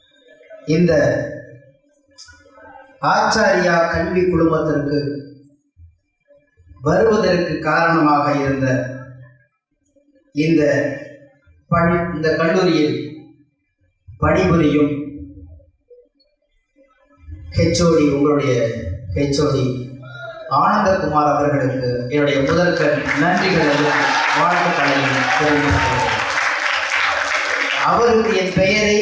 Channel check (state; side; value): identical; both; correlation 1.00